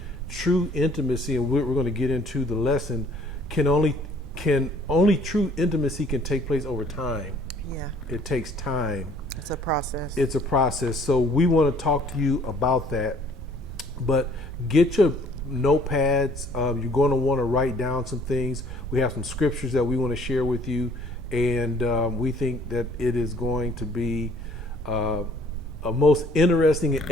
true intimacy, and we're going to get into the lesson, only true intimacy can take place over time. Yeah. It takes time. It's a process. It's a process. So we want to talk to you about that. But get your notepads. You're going to want to write down some things. We have some scriptures that we want to share with you. And we think that it is going to be a most interesting and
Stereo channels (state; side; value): normal; both; correlation 0.58